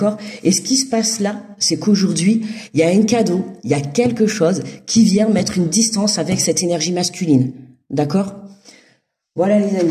Et ce qui se passe là, c'est qu'aujourd'hui, il y a un cadeau, il y a quelque chose qui vient mettre une distance avec cette énergie masculine. D'accord? Voilà les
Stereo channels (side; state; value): both; identical; correlation 1.00